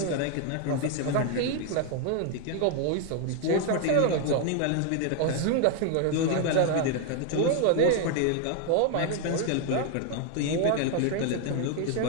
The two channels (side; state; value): both; different; correlation 0.00